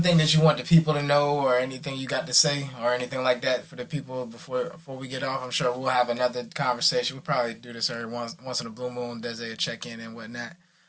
thing that you want the people to know, or anything you got to say, or anything like that for the people before we get off? I'm sure we'll have another conversation. We'll probably do this every once in a blue moon. Dezzae check in and whatnot.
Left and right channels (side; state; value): both; identical; correlation 1.00